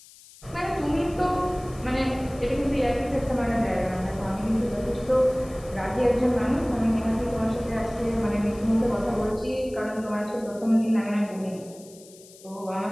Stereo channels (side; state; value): left; noise; hiss, 22 dB below the sound